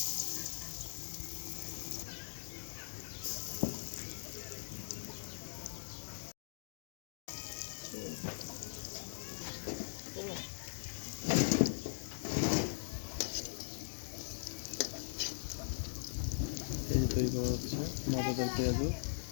এই যে তৈরি করা হচ্ছে মজাদার পেঁয়াজু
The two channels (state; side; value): silent; right; digital silence